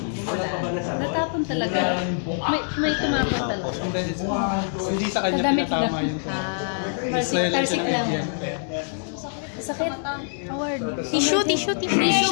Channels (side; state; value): right; silent; 57 dB below the other